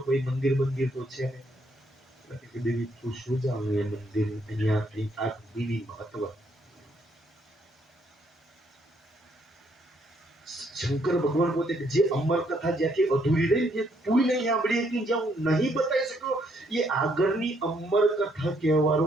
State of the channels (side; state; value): both; normal; correlation 0.71